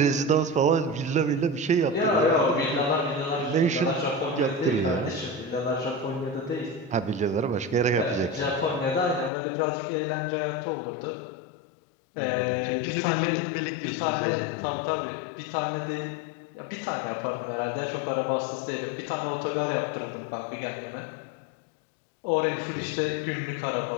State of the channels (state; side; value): drops out; right; at 9.3 s